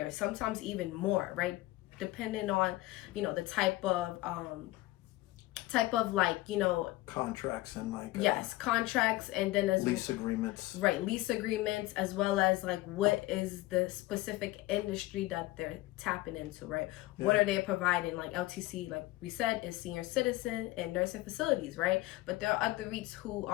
sometimes even more, right? Depending on, the type of like, contracts and like yes, contracts, and then as lease agreements, right, lease agreements, as well as like what is the specific industry that they're tapping into, right? What are they providing? Like LTC, like we said, is senior citizen and nursing facilities, right? But there are other REITs who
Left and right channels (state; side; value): quieter; right; 18.6 dB